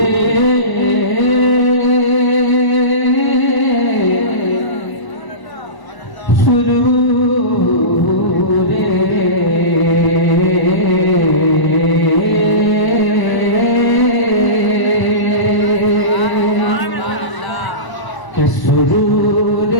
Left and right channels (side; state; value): right; late; 1.0 ms